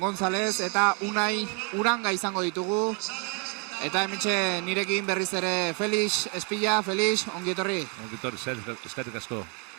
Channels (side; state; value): left; quieter; 33.9 dB